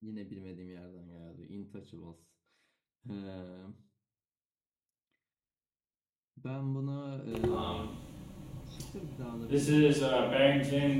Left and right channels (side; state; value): both; identical; correlation 1.00